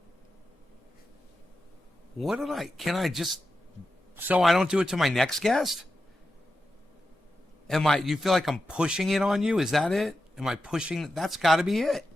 What did can I just, so I don't do it to my next guest? You feel like I'm pushing it on you? Is that it? Am I pushing? That's got to be it.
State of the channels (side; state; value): both; normal; correlation 0.90